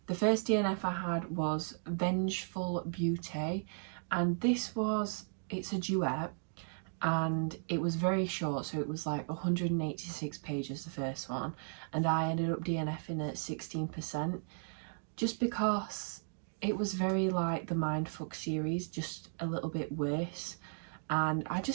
The first DNF I had was Vengeful Beauty, and it's a duet, and it was very short, so it was like 186 pages, the first one, and I ended up DNFing at 16%, just because it was very like the Mindfuck series, just a little bit worse. and I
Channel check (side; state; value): left; silent; digital silence